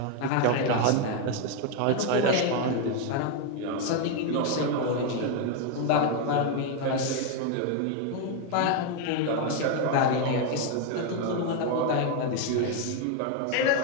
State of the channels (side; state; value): both; different; correlation 0.01